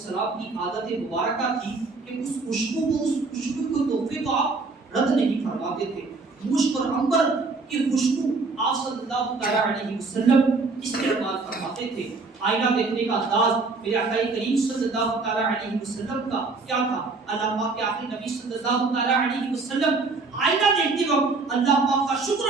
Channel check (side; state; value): left; quieter; 3.9 dB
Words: کی عادت مبارکہ تھی کہ اس خوشبو کو تحفے کو آپ رد نہیں فرماتے تھے. مشک اور عنبر کی خوشبو آپ صلی اللہ علیہ وسلم استعمال فرماتے تھے. آئینہ دیکھنے کا انداز میرے آقا کریم صلی اللہ علیہ وسلم کا کیا تھا؟ اللہ پاک کے آخری نبی صلی اللہ علیہ وسلم آئینہ دیکھتے وقت اللہ پاک کا شکر